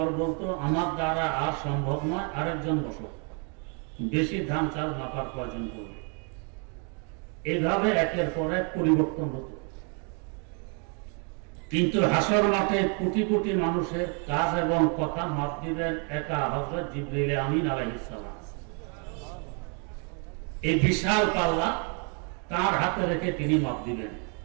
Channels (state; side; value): quieter; left; 38.4 dB